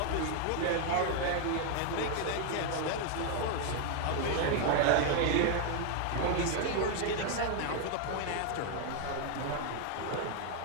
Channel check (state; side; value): different; both; correlation 0.01